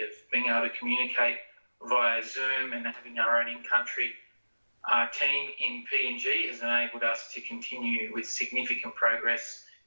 of being able to communicate via Zoom and having our own in-country team in PNG has enabled us to continue with significant progress,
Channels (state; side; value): inverted; both; correlation -1.00